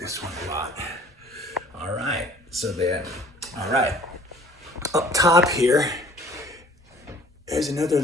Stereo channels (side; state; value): both; normal; correlation 0.53